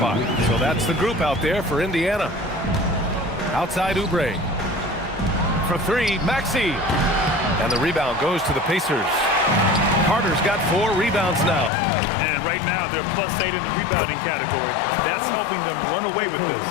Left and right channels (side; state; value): right; drops out; at 11.7 s